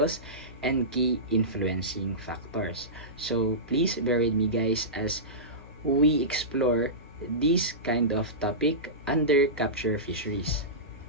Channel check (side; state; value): both; normal; correlation -0.18